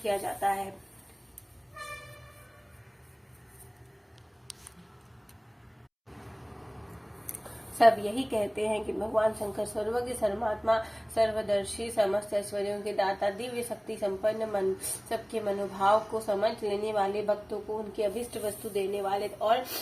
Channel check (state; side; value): identical; both; correlation 1.00